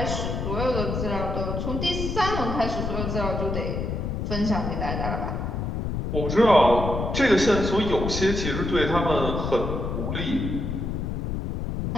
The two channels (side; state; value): left; noise; rumble, 2 dB below the sound